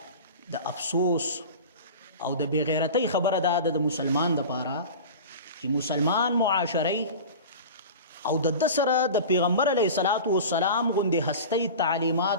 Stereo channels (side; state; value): both; inverted; correlation -0.33